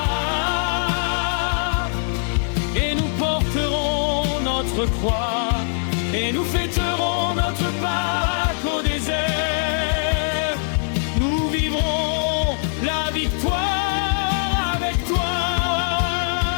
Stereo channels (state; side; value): silent; right; 58 dB below the other